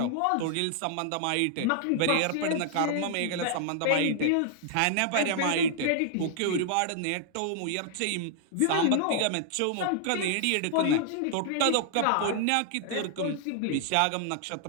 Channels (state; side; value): different; both; correlation -0.01